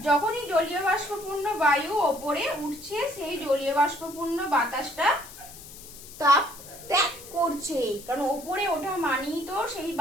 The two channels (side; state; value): left; noise; hiss, 16 dB below the sound